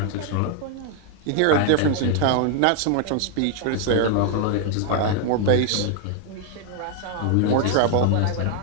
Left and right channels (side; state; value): both; different; correlation 0.00